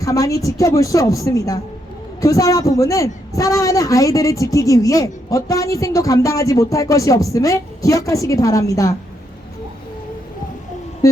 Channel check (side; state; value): both; normal; correlation 0.77